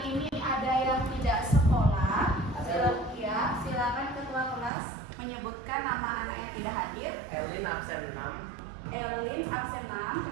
ini ada yang tidak sekolah? Silakan ketua kelas menyebutkan nama anak yang tidak hadir. Elin absen 6. Elin absen 6.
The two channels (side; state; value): left; drops out; at 4.7 s